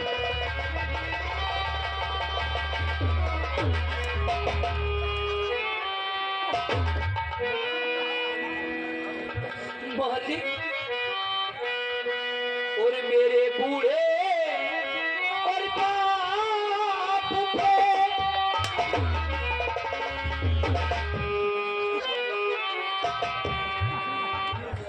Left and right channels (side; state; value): both; identical; correlation 1.00